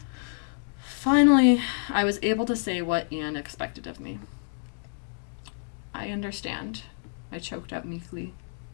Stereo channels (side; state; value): right; silent; 55 dB below the other